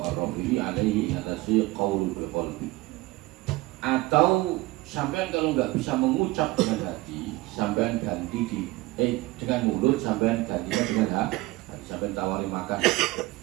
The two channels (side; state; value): left; quieter; 20.1 dB